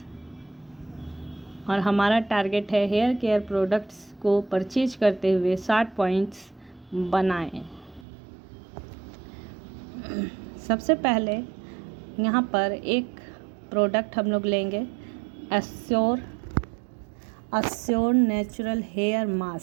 और हमारा टारगेट है हेयर केयर प्रोडक्ट्स को परचेज करते हुए 60 पॉइंट्स बनाएं। सबसे पहले यहाँ पर एक प्रोडक्ट हम लोग लेंगे, अस्योर नेचुरल हेयर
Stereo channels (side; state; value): left; drops out; at 8.1 s